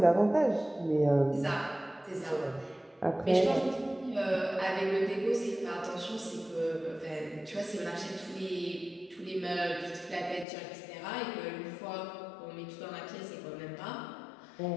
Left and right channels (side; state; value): right; drops out; at 10.5 s